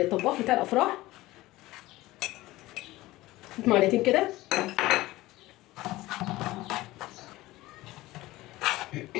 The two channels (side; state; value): right; quieter; 18.1 dB